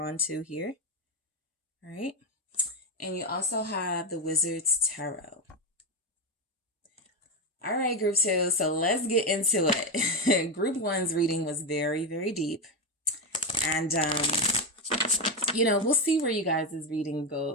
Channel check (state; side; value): normal; both; correlation 0.11